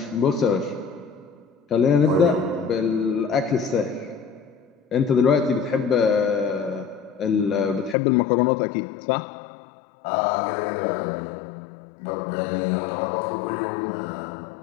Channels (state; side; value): drops out; right; at 8.0 s